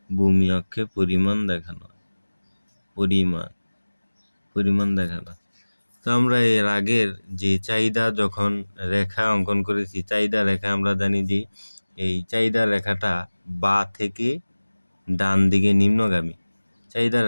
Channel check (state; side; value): inverted; both; correlation -1.00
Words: ভূমি অক্ষে পরিমাণ দেখানো হয়, পরিমাণ দেখানো। তো আমরা এর আগের যে চাহিদা যখন রেখা অঙ্কন করেছি, চাহিদা রেখা আমরা জানি যে এই চাহিদা রেখাটা বা থেকে ডান দিকে নিম্নগামী। চাহিদা